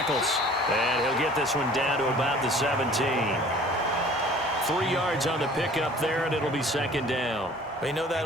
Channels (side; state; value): both; normal; correlation 0.49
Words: And he'll get this one down to about the 17. 3 yards on the pickup there, and it'll be 2nd down. Well, you know that